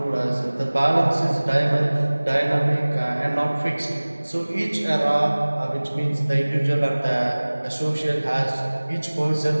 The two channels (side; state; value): both; inverted; correlation -1.00